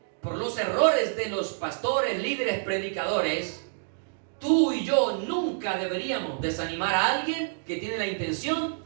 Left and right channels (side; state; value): left; silent; digital silence